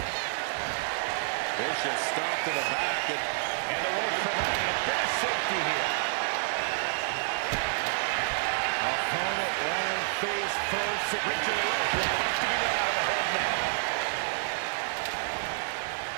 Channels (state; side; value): silent; left; digital silence